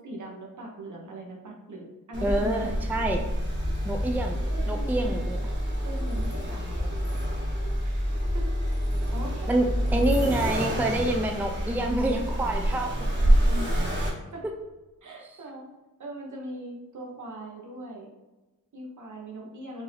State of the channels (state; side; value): normal; both; correlation 0.82